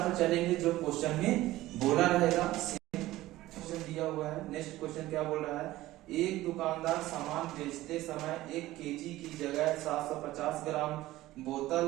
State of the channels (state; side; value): quieter; left; 16.5 dB